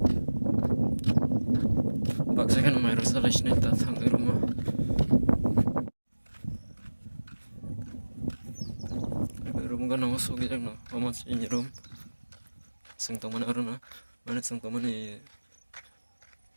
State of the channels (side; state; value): both; inverted; correlation -1.00